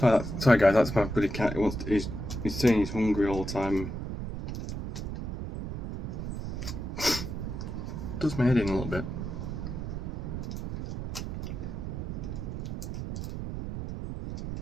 Sorry guys, that's my bloody cat. He's saying he's hungry all the time. Does my head in a little bit.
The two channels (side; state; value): right; noise; rumble, 5 dB below the sound